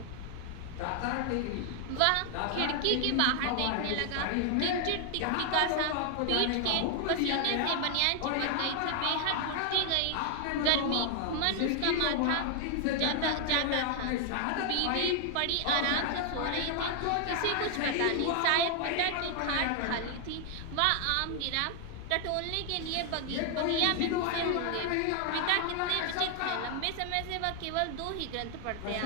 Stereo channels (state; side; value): different; both; correlation 0.00